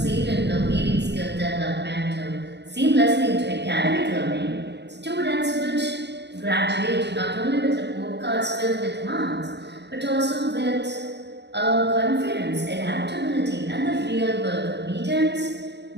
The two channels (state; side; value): late; left; 0.50 ms